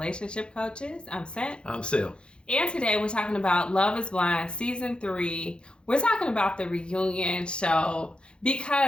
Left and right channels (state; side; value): late; right; 0.054 ms